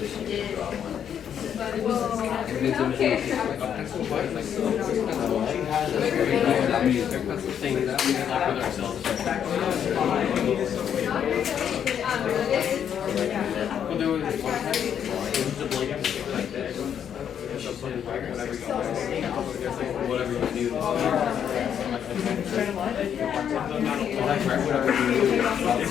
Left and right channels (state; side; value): quieter; right; 8.7 dB